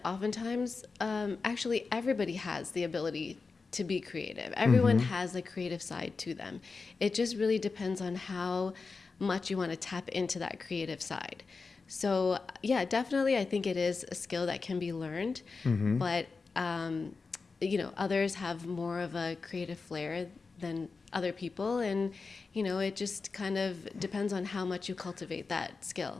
oftentimes, actually everybody has the ability to be creative. Everyone has a creative side to them. It just really depends on how much you want to tap into that creative side. So yeah, definitely I think it is a skill that can be learned, but others have more of a creative flair than other people, and it just kind of depends on how much you cultivate that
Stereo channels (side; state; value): right; quieter; 4.4 dB